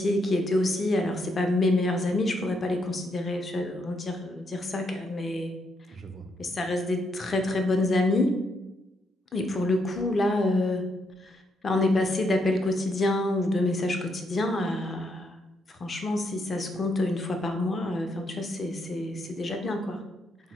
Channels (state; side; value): normal; both; correlation 0.77